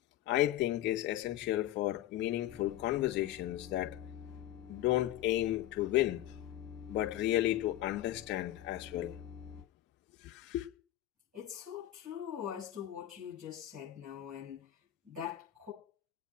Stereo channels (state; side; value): quieter; right; 13.8 dB